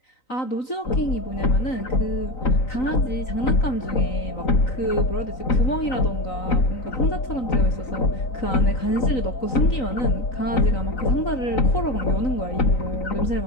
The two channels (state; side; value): late; right; 3.9 ms